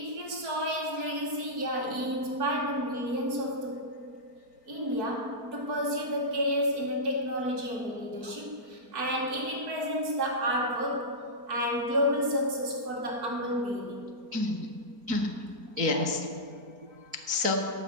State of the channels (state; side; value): late; left; 4.3 ms